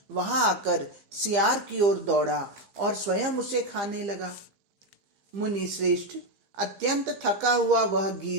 वहां आकर सियार की ओर दौड़ा और स्वयं उसे खाने लगा। मुनि श्रेष्ठ, अत्यंत थका हुआ वह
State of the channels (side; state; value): left; late; 15 ms